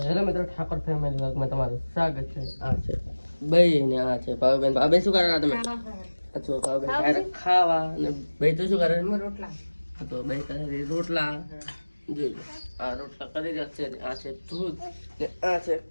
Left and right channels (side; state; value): both; inverted; correlation -1.00